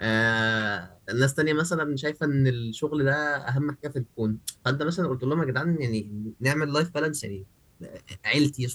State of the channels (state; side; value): identical; both; correlation 1.00